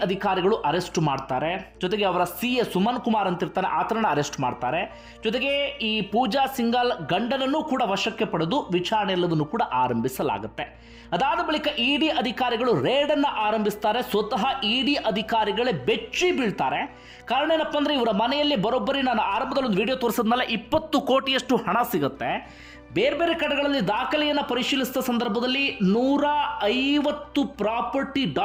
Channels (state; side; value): identical; both; correlation 1.00